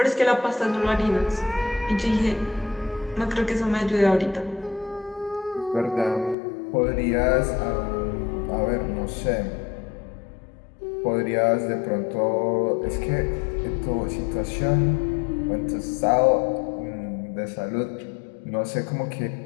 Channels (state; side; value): drops out; right; at 6.4 s